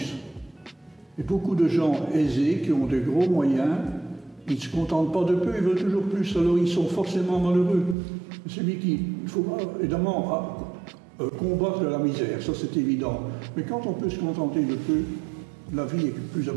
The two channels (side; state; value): left; drops out; at 8.0 s